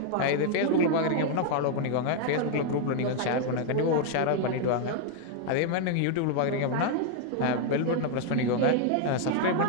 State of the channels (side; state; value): both; different; correlation 0.00